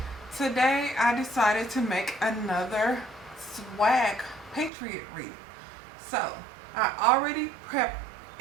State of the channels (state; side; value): drops out; left; at 4.7 s